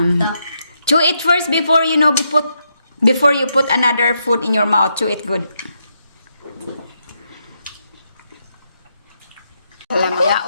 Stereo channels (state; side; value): inverted; both; correlation -0.80